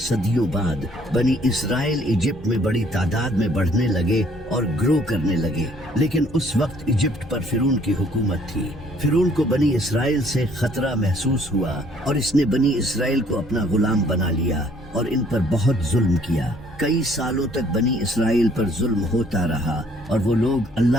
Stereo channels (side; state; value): both; normal; correlation 0.61